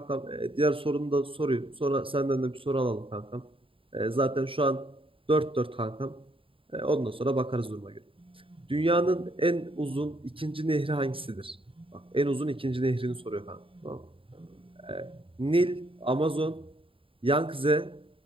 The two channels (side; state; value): left; late; 0.26 ms